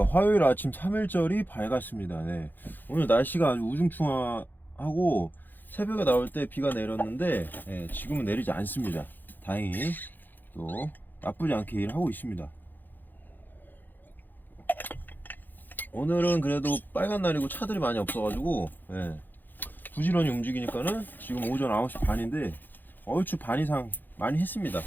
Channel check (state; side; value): late; right; 0.089 ms